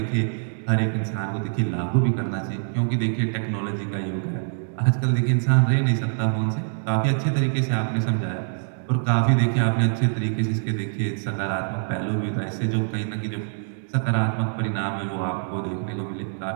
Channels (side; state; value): left; silent; digital silence